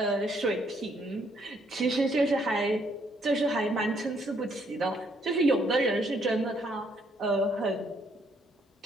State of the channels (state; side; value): normal; both; correlation 0.69